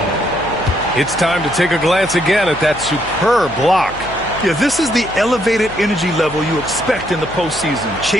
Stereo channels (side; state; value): left; noise; hum, 17 dB below the sound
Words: It's time to take a glance again at that superb block. Yeah, this is the elevated energy level you expect in the postseason,